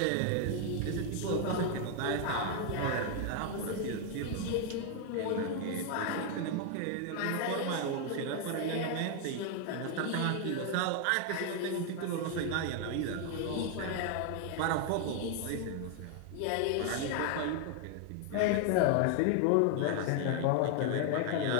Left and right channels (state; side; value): different; both; correlation 0.01